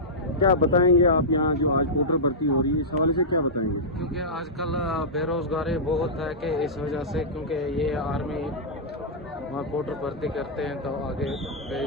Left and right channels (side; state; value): both; normal; correlation -0.13